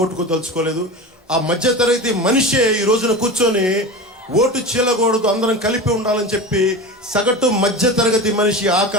ఆ మధ్యతరగతి మనిషే ఈ రోజున కూర్చొని ఓటు చీలకూడదు, అందరం కలిపి ఉండాలని చెప్పి సగటు మధ్యతరగతి మనిషి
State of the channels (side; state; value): both; normal; correlation 0.28